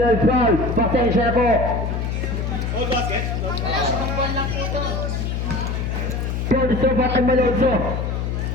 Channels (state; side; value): noise; left; hum, 1 dB below the sound